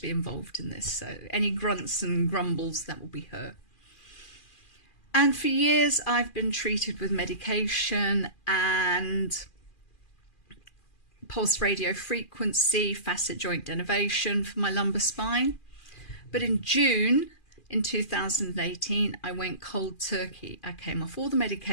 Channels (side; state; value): right; late; 2.4 ms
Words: be involved in this, so any grunts and grumbles, that will be her. And for years, I've been treated with medication and pulse radio frequency, facet joint denervation for my lumbar spine. But in June in 2018, I went cold turkey. I came off all the